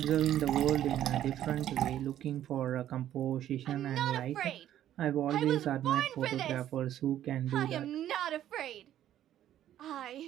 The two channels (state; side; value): quieter; left; 11.8 dB